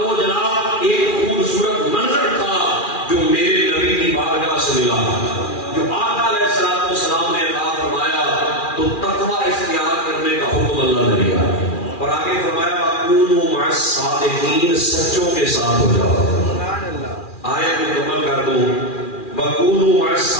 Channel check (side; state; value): right; late; 2.4 ms